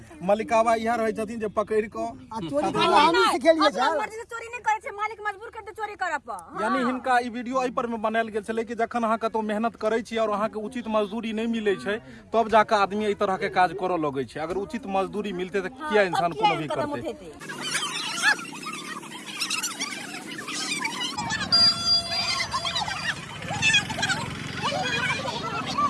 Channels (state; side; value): identical; both; correlation 1.00